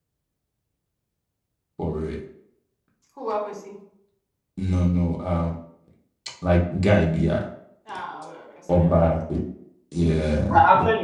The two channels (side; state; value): both; identical; correlation 1.00